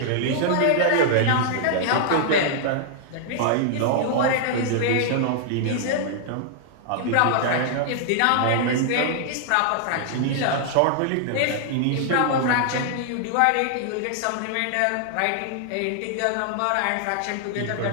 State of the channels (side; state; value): both; different; correlation -0.01